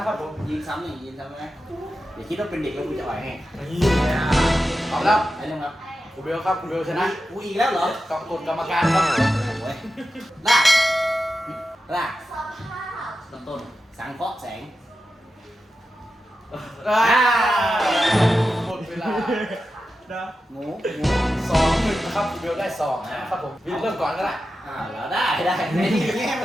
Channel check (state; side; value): normal; both; correlation 0.91